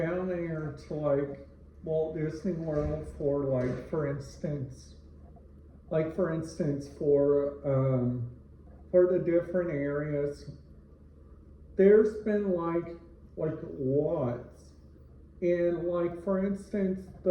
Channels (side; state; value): both; identical; correlation 1.00